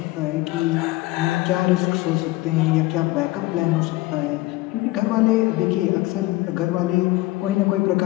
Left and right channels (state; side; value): quieter; right; 19.3 dB